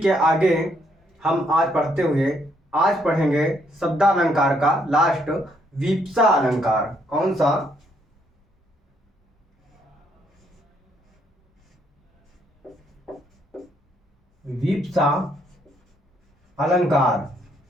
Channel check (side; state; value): both; normal; correlation 0.71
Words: आगे हम आज पढ़ेंगे शब्दालंकार का लास्ट विप्सा अलंकार। कौन सा? विप्सा अलंकार।